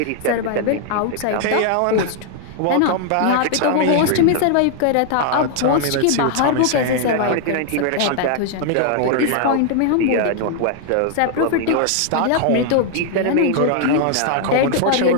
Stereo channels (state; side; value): different; both; correlation 0.00